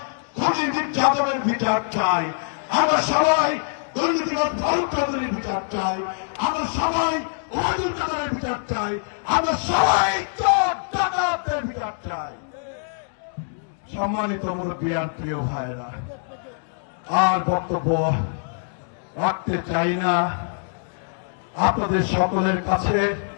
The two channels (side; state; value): right; silent; digital silence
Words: খুনি মির্জা আজমের বিচার চাই, আমরা সবাই দুর্নীতিবাদ ফারুক চৌধুরীর বিচার চাই, আমরা সবাই ওবায়দুল কাদেরের বিচার চাই, আমরা সবাই চোর ডাকাতদের বিচার চাই। সম্মানিত মুরব্বিয়ান, প্রিয় ভাইরা, আর বক্তব্য রাখতে চাই না। আপনাদের সকলের কাছে